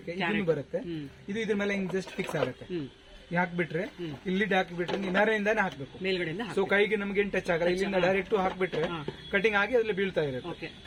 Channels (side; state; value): both; identical; correlation 1.00